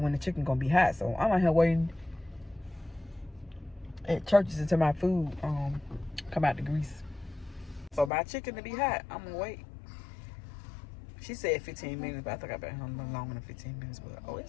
when the chicken gonna be hot. So I'm out here waiting at churches until my food come out the grease. So my chicken to be hot, I'm gonna wait. She said 15 minutes, but I think I've been home longer than 15 minutes. But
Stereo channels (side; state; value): right; drops out; at 8.1 s